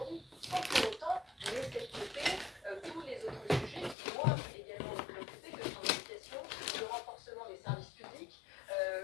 sans pour autant laisser de côté tous les autres sujets qui doivent également nous préoccuper, que sont l'éducation, le renforcement des services publics,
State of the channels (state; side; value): drops out; right; at 4.0 s